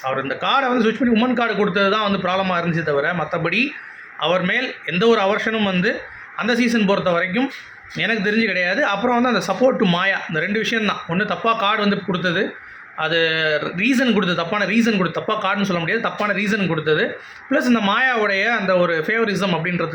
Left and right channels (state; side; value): identical; both; correlation 1.00